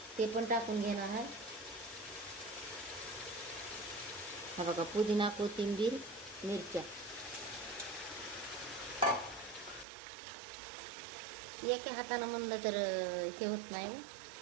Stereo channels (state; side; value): drops out; left; at 9.9 s